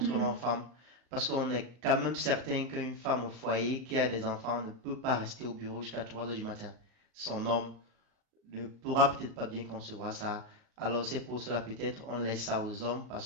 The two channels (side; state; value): left; late; 38 ms